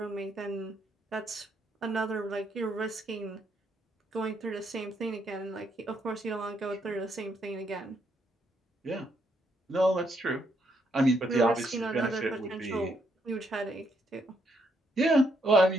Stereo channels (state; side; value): normal; both; correlation 0.75